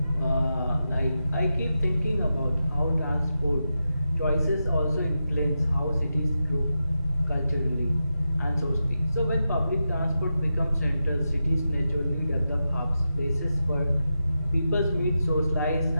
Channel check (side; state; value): both; inverted; correlation -0.89